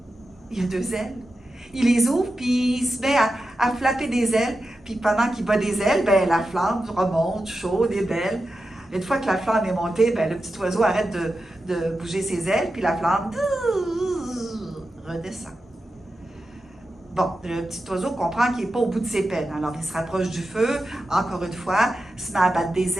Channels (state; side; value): normal; both; correlation 0.91